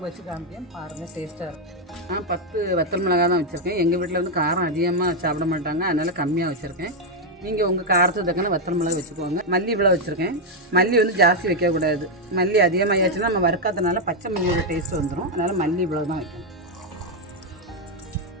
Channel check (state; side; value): normal; both; correlation 0.02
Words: வச்சு காமிப்பேன். பாருங்கள், டேஸ்ட்டாக இருக்கும். நான் 10 வத்தல் மிளகா தான் வச்சுருக்கேன். எங்கள் வீட்டில் வந்து காரம் அதிகமாக சாப்பிட மாட்டாங்க, அதனால் கம்மியாக வச்சுருக்கேன். நீங்கள் உங்கள் காரத்துக்கு தக்கன வத்தல் மிளகா வச்சுக்கோங்க. மல்லி இவ்வளோ வச்சுருக்கேன். மல்லி வந்து ஜாஸ்தி வைக்கக்கூடாது. மல்லி அதிகமாகியாச்சுன்னா நம்ம வறுக்காதனால பச்சை மல்லியோட டேஸ்ட் வந்துடும். அதனால் மல்லி இவ்வளோ தான் வைக்கணும்.